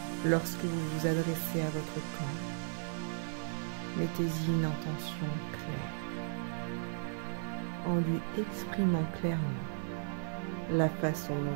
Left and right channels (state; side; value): silent; left; 54 dB below the other